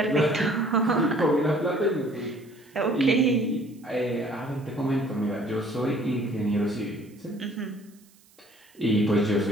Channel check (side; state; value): right; noise; hiss, 29 dB below the sound